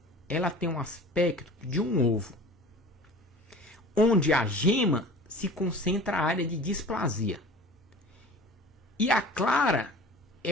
ela tem um aspecto de um ovo, onde a gema se concentra a área de displasia. E a clara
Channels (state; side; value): normal; both; correlation 0.41